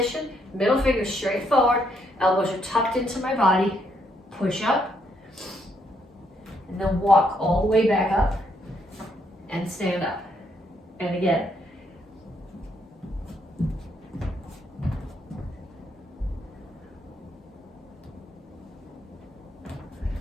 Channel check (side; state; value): both; normal; correlation 0.73